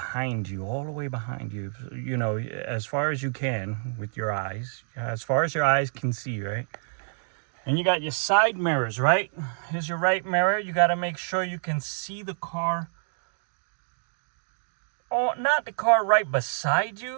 you, all the way behind you, as far as you can with your eyes, as far as your eyes can see, right? And you got your side mirrors, right? Here's your right mirror. You got to make sure you can see the car. Oh, not the car right beside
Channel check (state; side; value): silent; left; digital silence